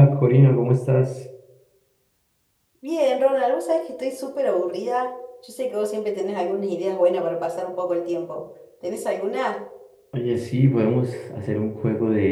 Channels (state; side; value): identical; both; correlation 1.00